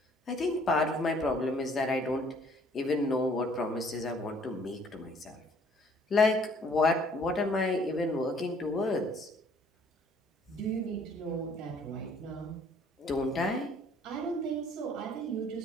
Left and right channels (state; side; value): normal; both; correlation 0.59